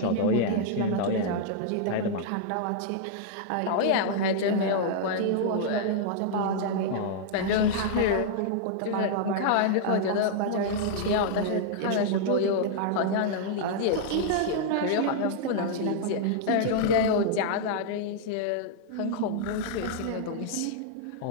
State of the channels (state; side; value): different; both; correlation -0.01